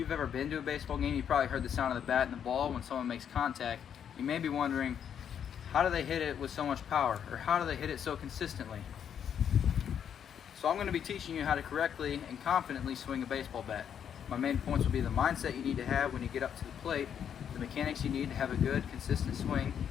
ever been to a baseball game, you probably heard the sound of the bat and the ball when someone makes contact. You may be wondering, how do they hit it with so much power, or how do they hit it so consistently? So I'm going to be teaching you how to correctly and confidently swing a baseball bat. My main points will be the mindset you need to have when you get up to the plate, the mechanics you need to have a good, consistent swing,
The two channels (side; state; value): right; quieter; 8.5 dB